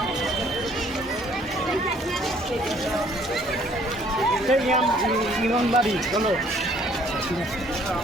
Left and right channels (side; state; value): both; normal; correlation 0.60